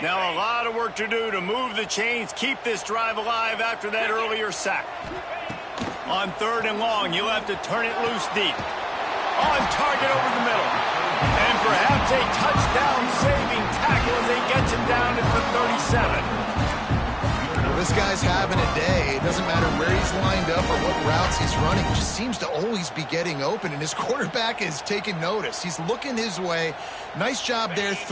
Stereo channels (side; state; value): both; identical; correlation 1.00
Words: Now a lot of work to do to move the chains, keep this drive alive after that earlier sack. On 3rd and long, you'll have to turn it loose deep. On target over the middle. And perhaps a touchdown-saving tackle as he gets him down at the 37. Well, this guy's having a day. It doesn't matter where he's lined up or what routes he's running. He just seems to always be getting open, and his quarterback is taking notice. He's looking his way. Nice job there,